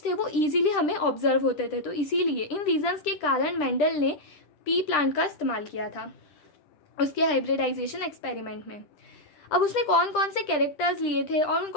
थे वो ईजिली हमें ऑब्जर्व होते थे। तो इसीलिए इन रीजंस के कारण मेंडल ने पी प्लांट का इस्तेमाल किया था उसके हाइब्रिडाइजेशन एक्सपेरिमेंट में। अब उसने कौन कौन से कैरेक्टर्स लिए थे और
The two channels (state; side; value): late; right; 10 ms